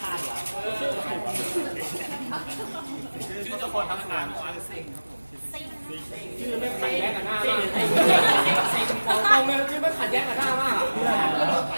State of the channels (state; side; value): inverted; both; correlation -1.00